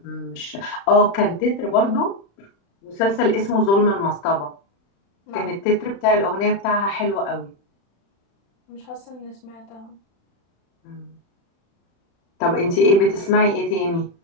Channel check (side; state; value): right; late; 36 ms